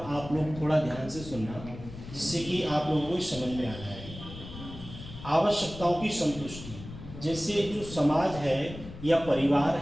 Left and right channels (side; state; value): left; noise; rumble, 13 dB below the sound